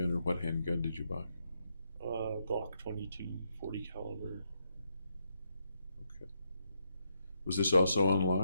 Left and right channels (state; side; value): inverted; both; correlation -0.80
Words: or what handgun did you buy? Glock 22, 40 caliber. Okay. Was this also